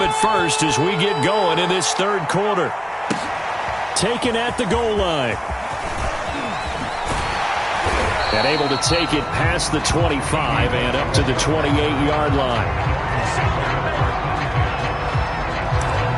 it first as we get going in this third quarter. Taken at the goal line. And able to take it past the 25 and up to the 28-yard line.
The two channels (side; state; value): both; identical; correlation 1.00